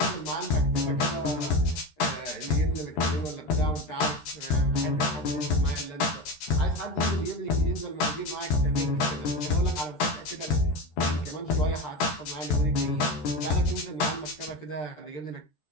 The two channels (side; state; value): right; late; 13 ms